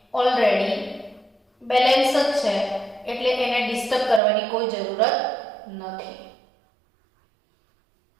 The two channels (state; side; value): drops out; left; at 4.2 s